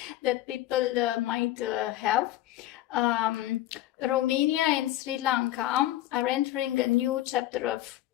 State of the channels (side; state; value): right; quieter; 14.7 dB